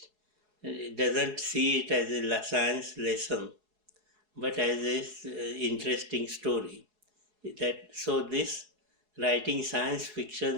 doesn't see it as a science lesson, but as a interesting story. So this writing science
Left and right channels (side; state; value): left; late; 4.7 ms